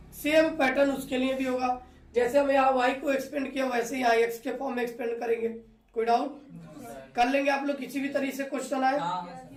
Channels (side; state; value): both; identical; correlation 1.00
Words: सेम पैटर्न उसके लिए भी होगा, जैसे हम यहाँ y को एक्सपेंड किया वैसे ही यहाँ x के फॉर्म में एक्सपेंड करेंगे। कोई डाउट कर लेंगे आप लोग, किसी भी तरीके से क्वेश्चन आए